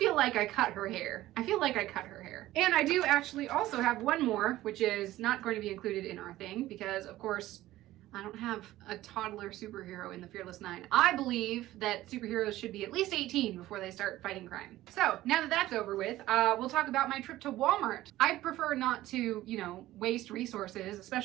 like I cut her hair. And I do actually also have one more, which is not going to be included in our thing because, of course, I don't have a toddler superhero in the Fearless 9. I believe that superheroes should be at least 18 before they start fighting crime. So now that that's over with, we'll talk about my trip to Walmart. I prefer not to, waste resources,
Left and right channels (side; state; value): left; quieter; 15.7 dB